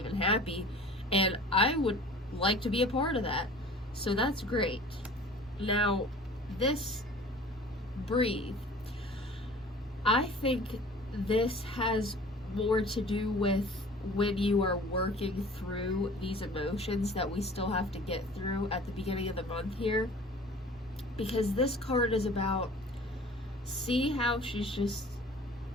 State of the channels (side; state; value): both; normal; correlation 0.45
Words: and happy, and I would like to be a part of that. So that's great. Now, this breathe, I think this has more to do with when you are working through these emotions that we still have to get through at the beginning of the month here. Because this card is about, see how she's